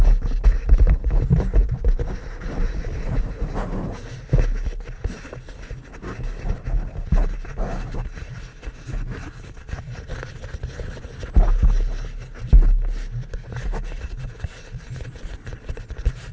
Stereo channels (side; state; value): both; identical; correlation 1.00